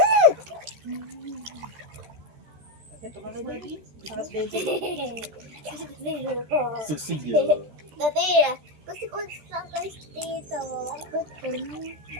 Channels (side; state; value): left; late; 14 ms